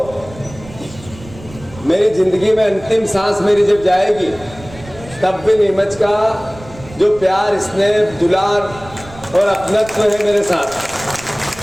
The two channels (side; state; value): right; noise; rumble, 18 dB below the sound